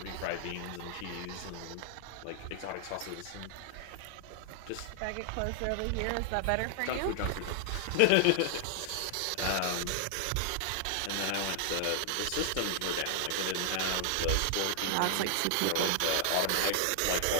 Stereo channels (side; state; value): both; different; correlation -0.01